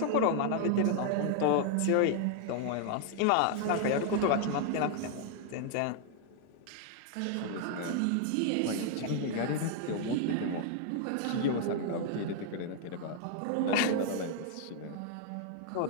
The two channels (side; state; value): both; different; correlation 0.00